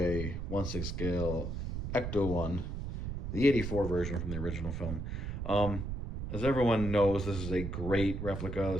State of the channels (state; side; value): noise; right; rumble, 4 dB below the sound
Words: 1/6 scale Ecto one, the 84 version from the original film. Um, as everyone knows, this is a great replica.